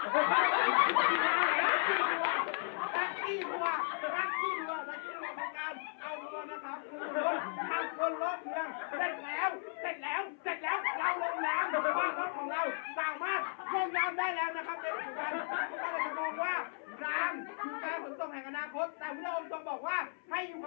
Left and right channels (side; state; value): right; silent; 54 dB below the other